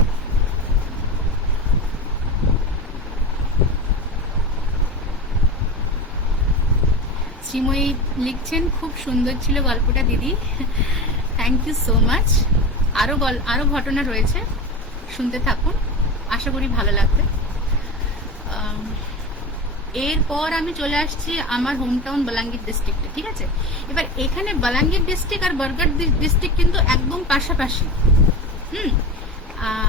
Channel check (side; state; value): both; normal; correlation 0.27